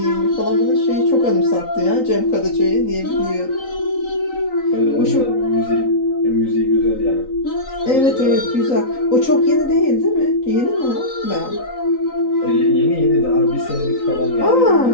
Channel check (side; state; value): right; late; 3.9 ms